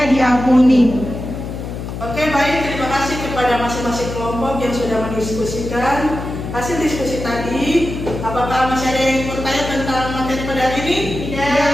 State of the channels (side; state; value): left; noise; hum, 7 dB below the sound